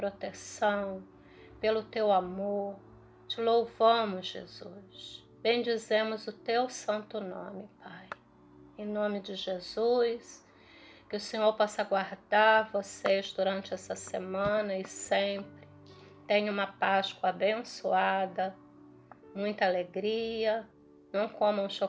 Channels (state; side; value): identical; both; correlation 1.00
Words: pelo teu amor. Te louvamos, Jesus. Bendizemos o teu santo nome, Pai. Em nome de Jesus, que o Senhor possa guardar vocês durante essa semana e sempre. Tenha uma Páscoa abençoada, muita alegria, não comam